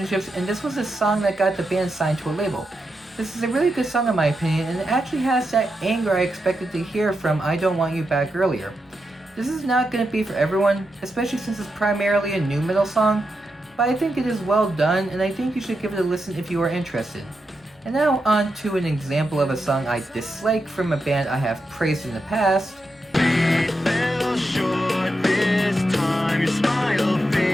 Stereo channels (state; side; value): normal; both; correlation 0.86